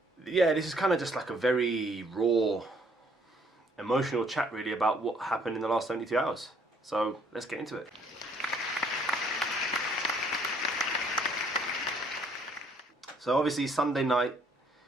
Yeah, this is kind of just like a very raw, emotional chat really about what happened in the last 72 hours. So let's get into it. So obviously Sunday night,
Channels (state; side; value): normal; both; correlation 0.64